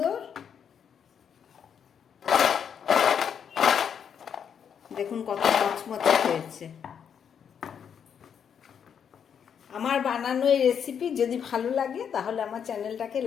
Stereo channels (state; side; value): quieter; right; 7.8 dB